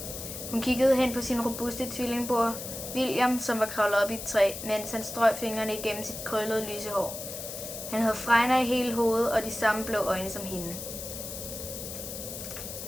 Hun kiggede hen på sin robuste tvillingbror, William, som var kravlet op i et træ, mens han strøg fingrene igennem sit krøllede lyse hår. Han havde fregner i hele hovedet og de samme blå øjne som hende.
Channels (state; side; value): noise; left; hiss, 8 dB below the sound